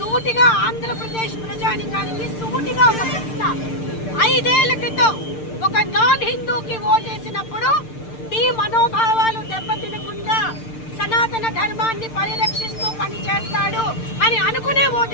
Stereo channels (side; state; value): right; late; 6.7 ms